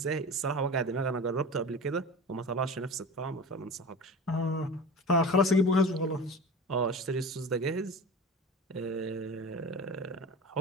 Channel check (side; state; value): both; normal; correlation 0.33